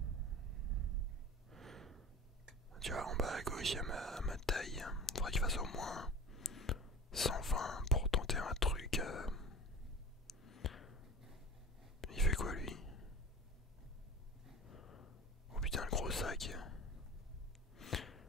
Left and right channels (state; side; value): normal; both; correlation 0.36